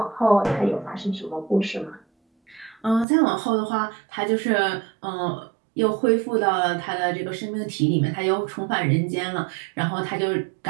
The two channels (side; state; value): left; drops out; at 3.1 s